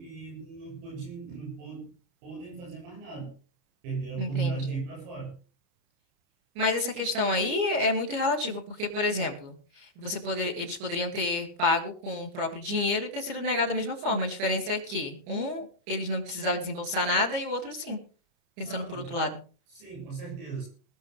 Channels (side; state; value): left; late; 30 ms